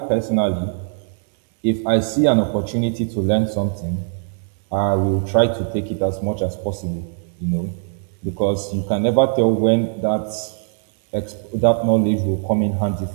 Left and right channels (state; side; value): silent; left; digital silence